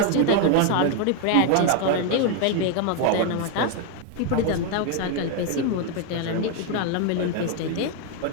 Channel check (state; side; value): different; both; correlation 0.01